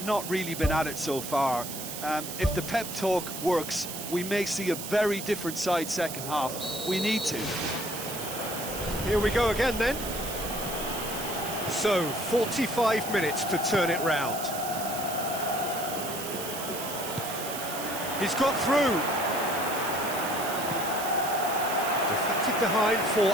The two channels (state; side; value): noise; right; hiss, 8 dB below the sound